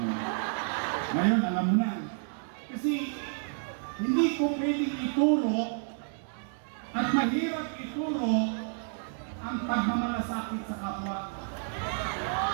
ngayon, alam mo na. Kasi, hindi ko pwedeng ituro at mahirap ituro ang pagmamalasakit sa kapwa.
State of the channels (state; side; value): silent; left; digital silence